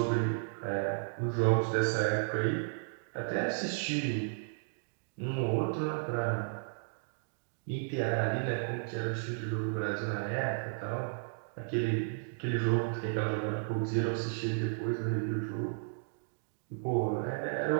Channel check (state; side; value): silent; left; digital silence